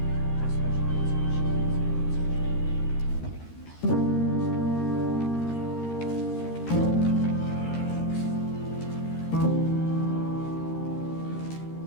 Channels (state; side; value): late; right; 13 ms